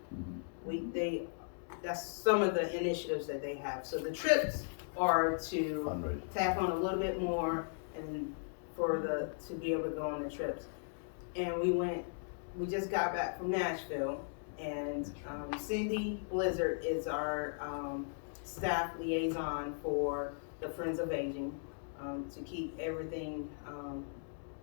That's some of the initiatives that they have. So the trips are to Fundraiser. tap on a little bit more and to be able to go on the trips. And we just got back from Nashville, and Cindy Blizzard is our staff liaison for the Friends of Aging, to keep everything,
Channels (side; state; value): right; silent; digital silence